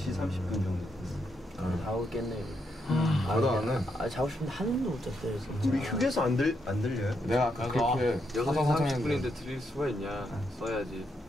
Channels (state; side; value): normal; both; correlation 0.79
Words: 30분 정도 됐어. 다 오겠네. 나도 안 해. 자고 싶은데 한숨도 못 잤어요 진짜. 우리 휴게소 안 들려요? 내가 아까 그렇게 6시 사사사사 30분인데 드릴 수가 있냐. 써야지.